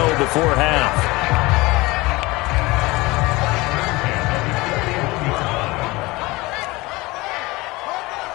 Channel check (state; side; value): quieter; right; 22.0 dB